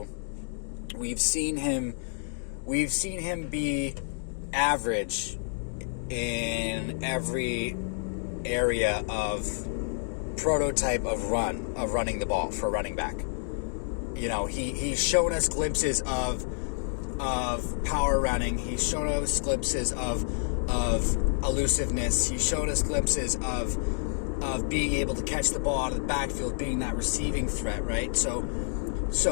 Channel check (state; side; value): silent; right; digital silence